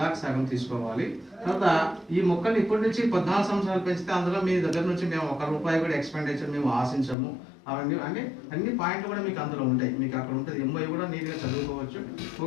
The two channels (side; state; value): right; drops out; at 7.2 s